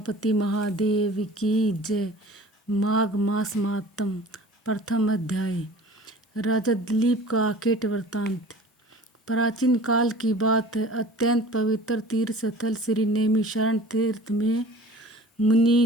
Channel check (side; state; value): both; normal; correlation 0.44